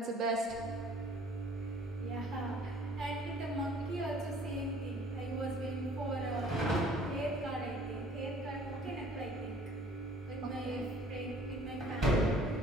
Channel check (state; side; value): normal; both; correlation 0.54